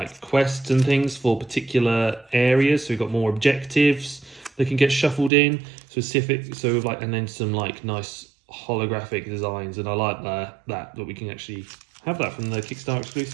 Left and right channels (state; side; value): drops out; left; at 5.3 s